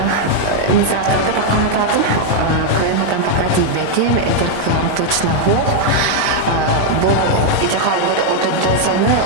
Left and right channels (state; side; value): different; both; correlation 0.00